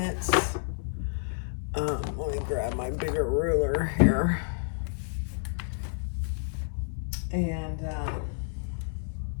Let me grab my bigger ruler here. And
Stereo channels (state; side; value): silent; right; 58 dB below the other